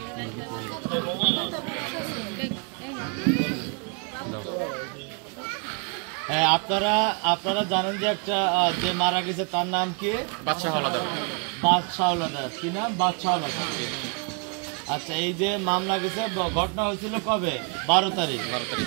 আপনারা আপনারা জানেন যে একটা যে মারা গেছে তার নাম কি? বাদশাহ হাওলাদার। বাদশাহ হাওলাদার। কি নাম? বাদশাহ হাওলাদার। আচ্ছা, এই যে মামলা গেছে, ঘটনা হয়েছিল কবে? 12 তারিখ।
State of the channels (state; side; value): quieter; left; 36.8 dB